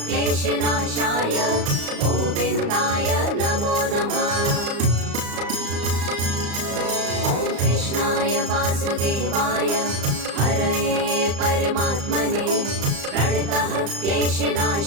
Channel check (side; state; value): left; late; 35 ms